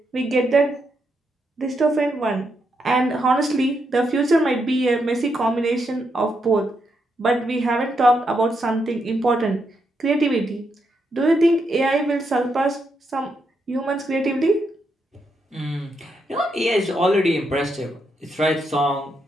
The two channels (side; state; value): both; normal; correlation 0.81